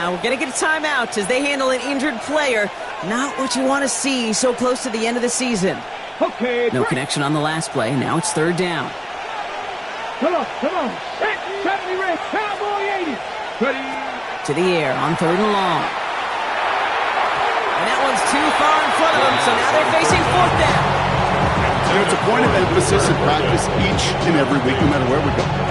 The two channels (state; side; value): identical; both; correlation 1.00